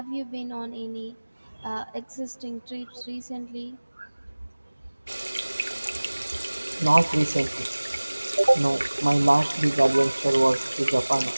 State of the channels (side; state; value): both; inverted; correlation -1.00